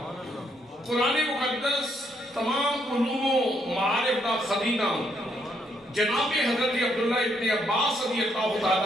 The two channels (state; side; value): normal; both; correlation 0.73